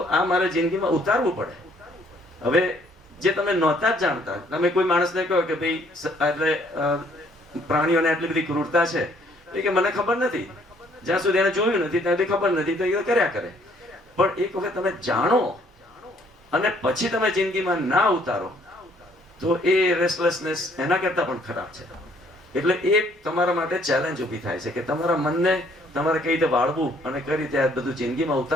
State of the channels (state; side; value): normal; both; correlation 0.63